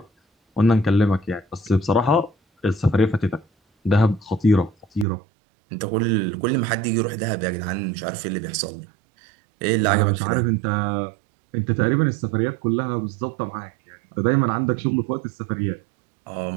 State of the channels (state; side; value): drops out; left; at 5.1 s